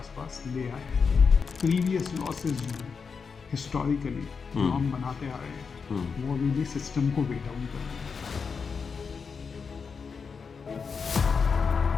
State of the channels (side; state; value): right; quieter; 5.5 dB